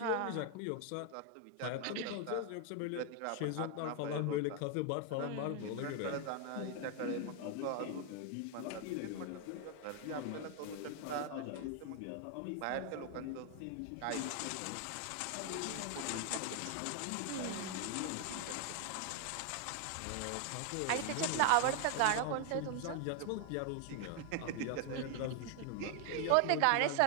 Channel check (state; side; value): different; both; correlation 0.00